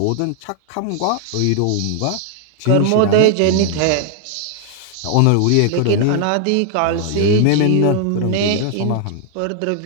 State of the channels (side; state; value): both; different; correlation 0.00